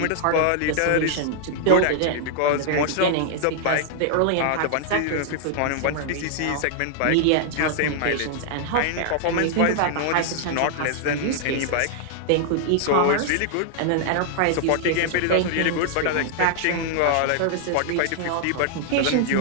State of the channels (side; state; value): both; different; correlation -0.01